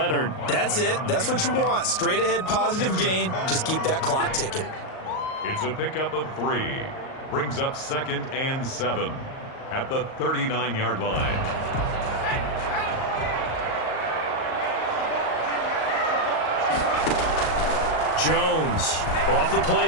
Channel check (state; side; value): late; right; 38 ms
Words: That's it. That's what you want. Straight ahead, positive gain. Just keep that clock ticking. It's a pickup of 3. Brings up 2nd and 7 at the 39-yard line. Jones off the